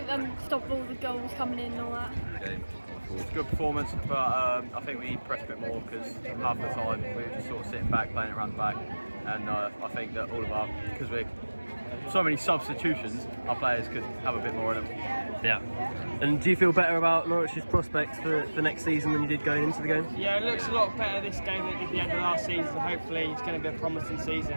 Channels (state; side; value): inverted; both; correlation -1.00